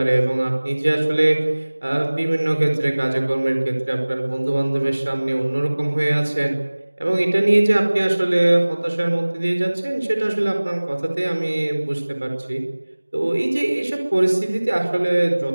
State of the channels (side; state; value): both; inverted; correlation -1.00